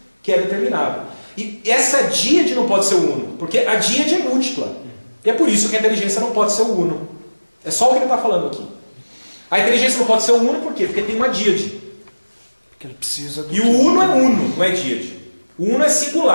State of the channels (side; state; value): both; inverted; correlation -1.00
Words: que é determinado. E essa díade não pode ser o uno. Porque a díade é múltipla. E é por isso que a inteligência não pode ser o uno. É só o que ele está falando aqui. A inteligência não pode ser o uno por quê? Porque tem uma díade. Porque ele precisa do... E o uno é uno, não é díade. O uno é